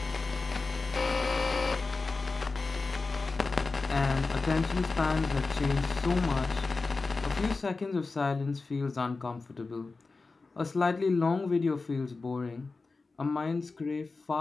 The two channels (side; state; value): right; quieter; 3.9 dB